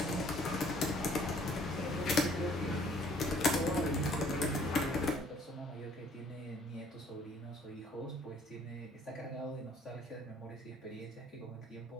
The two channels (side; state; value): both; normal; correlation 0.59